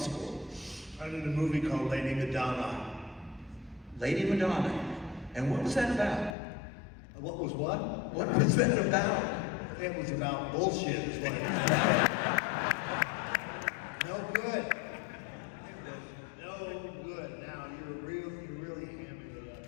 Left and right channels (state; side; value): drops out; right; at 6.4 s